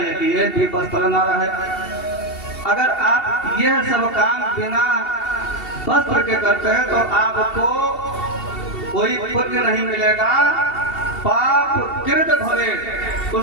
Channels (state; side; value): late; right; 2.7 ms